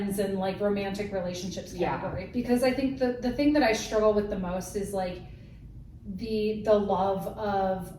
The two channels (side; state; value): both; identical; correlation 1.00